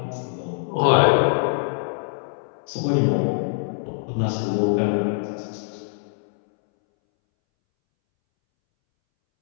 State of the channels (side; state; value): right; silent; 63 dB below the other